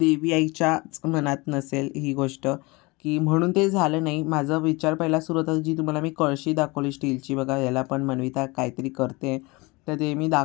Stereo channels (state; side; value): quieter; right; 24.9 dB